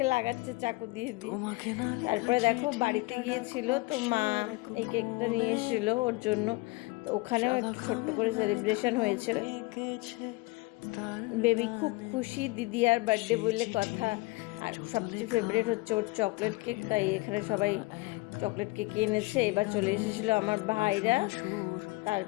লাগাচ্ছে চাকু দিয়ে দিয়ে। তারপরে দেখো বাড়িতে গিয়েছিল, তো মা এই কেকটা নিয়ে এসেছিলো ওর জন্য, তো ওখানেও একটু ছোট্ট করে সেলিব্রেশন হয়েছিল। বেবি খুব খুশি, দিদি আর বার্থডে বললে কথা। আর সবচেয়ে ফেভারিট হচ্ছে ওর চকলেট কেক, তাই এখানে সবাই চকলেট কেক এনেছে। এবার চলে এসেছিলো আমার ভাইরা।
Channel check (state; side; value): quieter; right; 23.5 dB